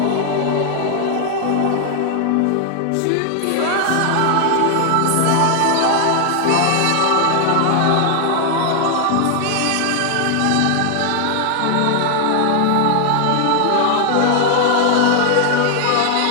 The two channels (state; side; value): different; both; correlation 0.00